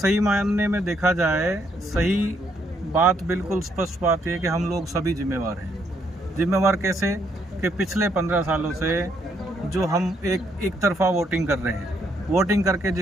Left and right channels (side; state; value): both; normal; correlation 0.73